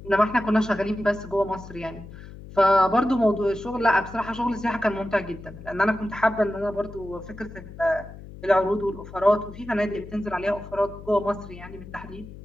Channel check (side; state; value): left; noise; hum, 15 dB below the sound